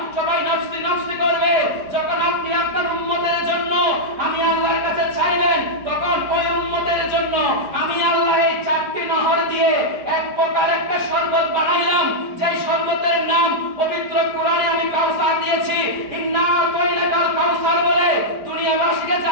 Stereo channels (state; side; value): late; left; 4.9 ms